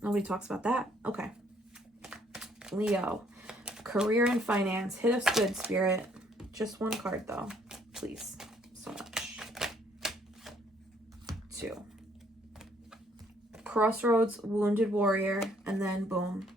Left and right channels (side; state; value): both; normal; correlation 0.65